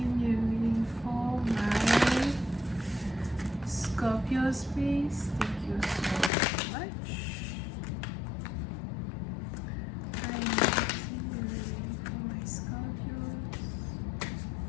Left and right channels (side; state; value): right; drops out; at 6.3 s